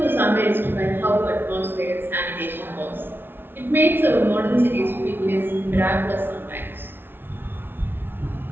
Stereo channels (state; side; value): late; left; 0.10 ms